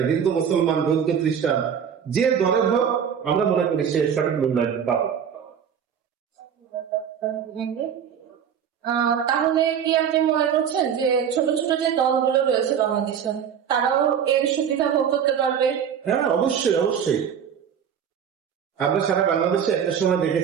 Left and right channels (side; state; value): left; quieter; 8.0 dB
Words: হিন্দু, মুসলমান, বৌদ্ধ, খ্রিস্টান, যে দলের হোক, আমরা মনে করি সে সঠিক মূল্যায়ন পাবে। তাহলে কি আপনি মনে করছেন যে ছোট ছোট যে দলগুলো রয়েছে বাংলাদেশে তারাও এর সুবিধা ভোগ করতে পারবে? হ্যাঁ, অবশ্যই অবশ্যই। আমরা সারা বাংলাদেশে একটা সময়